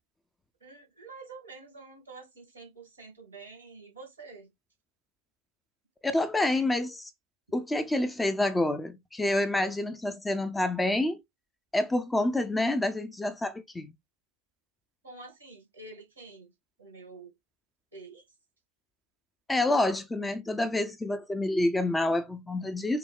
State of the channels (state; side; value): normal; both; correlation 0.88